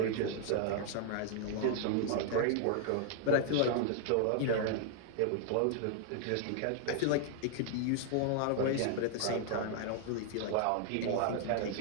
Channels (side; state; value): both; different; correlation 0.00